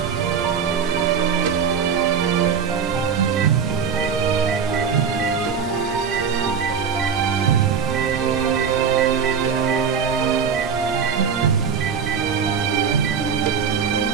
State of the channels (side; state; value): left; quieter; 6.8 dB